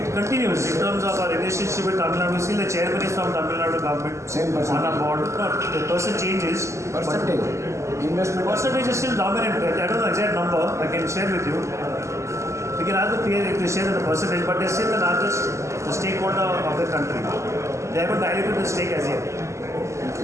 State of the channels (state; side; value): late; left; 0.14 ms